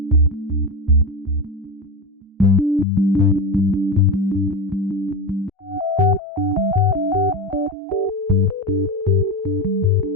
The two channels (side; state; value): both; normal; correlation 0.18